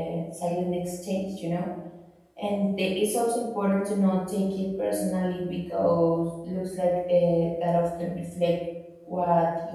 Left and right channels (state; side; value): identical; both; correlation 1.00